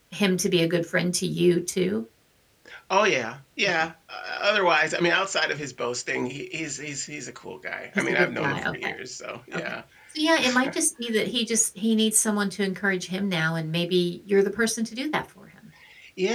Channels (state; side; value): identical; both; correlation 1.00